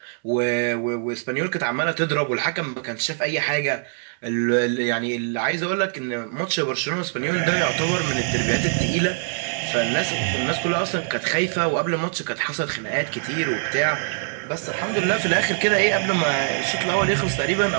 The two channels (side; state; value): left; silent; digital silence